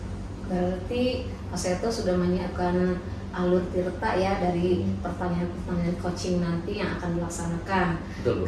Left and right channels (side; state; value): both; identical; correlation 1.00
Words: Berarti Pak Seto sudah menyiapkan alur tirta ya dari pertanyaan-pertanyaan coaching nanti yang akan dilaksanakan.